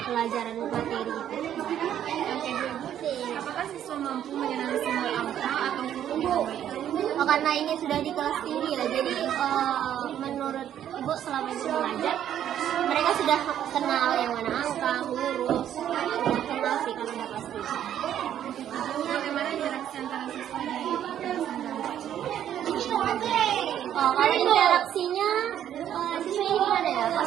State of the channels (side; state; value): left; quieter; 10.5 dB